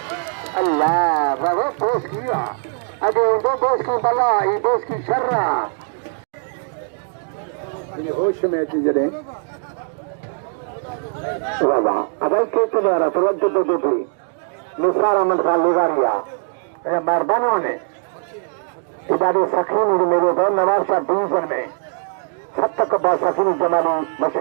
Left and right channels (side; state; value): left; silent; 60 dB below the other